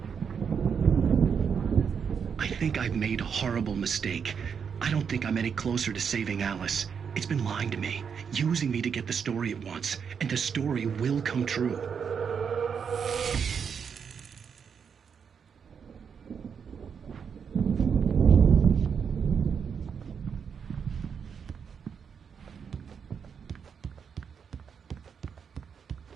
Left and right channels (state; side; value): quieter; left; 6.8 dB